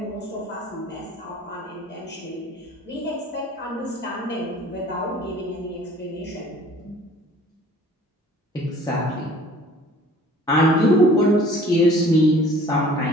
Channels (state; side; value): normal; both; correlation 0.51